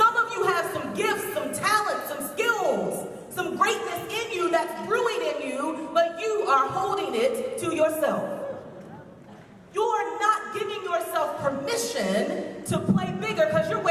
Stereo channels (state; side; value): identical; both; correlation 1.00